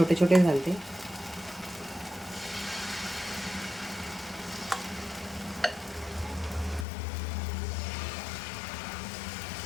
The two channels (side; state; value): right; drops out; at 6.9 s